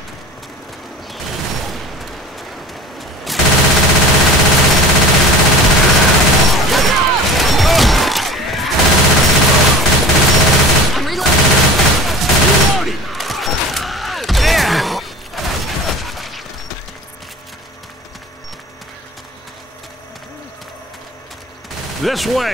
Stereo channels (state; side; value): normal; both; correlation 0.39